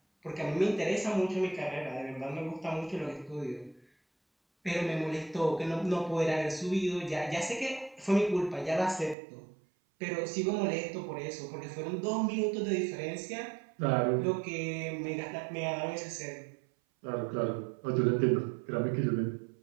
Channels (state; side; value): drops out; left; at 9.2 s